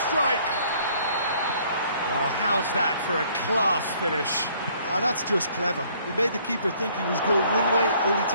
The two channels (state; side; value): inverted; both; correlation -0.61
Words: strike! Well, how's that for a class finish? That's just clever. He made the keeper think he was going one way, only